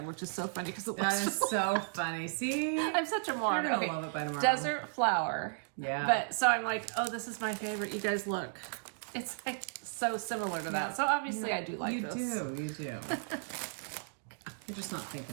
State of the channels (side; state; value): left; silent; digital silence